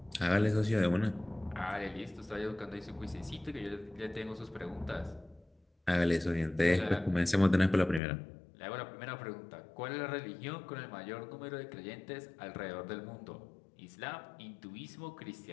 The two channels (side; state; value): right; drops out; at 8.0 s